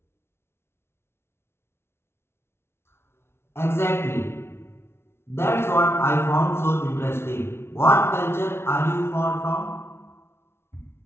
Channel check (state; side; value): late; right; 0.12 ms